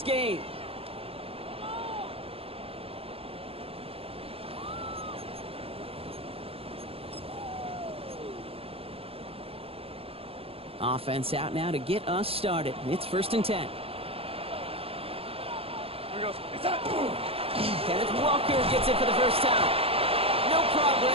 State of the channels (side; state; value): left; late; 0.28 ms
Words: game. Offense out now to get us started. It's 1st and 10. Kenneth Walker gets it for the first time. No